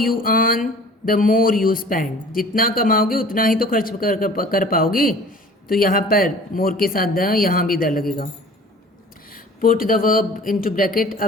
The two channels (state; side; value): normal; both; correlation 0.46